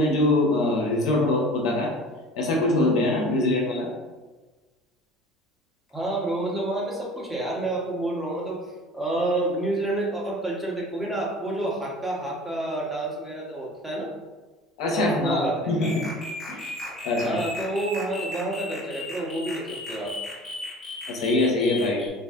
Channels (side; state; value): both; normal; correlation 0.42